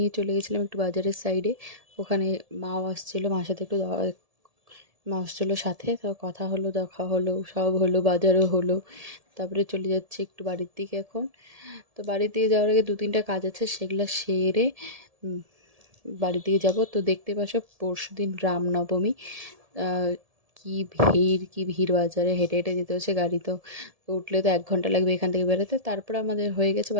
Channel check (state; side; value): late; left; 1.7 ms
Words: চলে গেছিলাম একটু বাজারের সাইডে। ওখানে মাও আসছিলো, মার সাথে একটু মা আসছিলো সাথে, তো কথা হলো, দেখা হলো, সব হলো, বাজারও হলো। তারপরে চলে যাচ্ছি একটু বাড়ির দিকে এখন। তো বাড়ির দিকে যাওয়ার আগে দু তিনটা কাজ আছে, সেগুলো সেরে উম, বাড়ির দিকে যাব। তো দেখতে পাচ্ছ পরশুদিন রামনবমী। আহ, কি ভিড় বাজারে, হেঁটে হেঁটে যেতে হচ্ছে, গাড়ি তো তো উঠলে তো 1 ঘন্টা লাগবে এখান থেকে বেরোতে। তারপরে আমাদের হয়ে গেছে